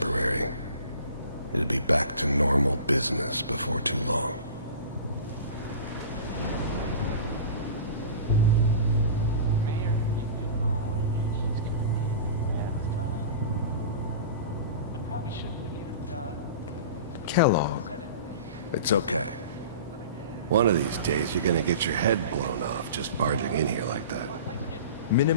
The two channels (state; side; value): inverted; both; correlation -0.37